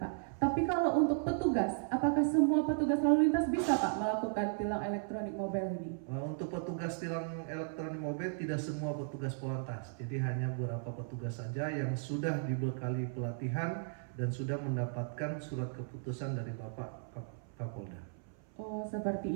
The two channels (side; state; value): left; silent; 54 dB below the other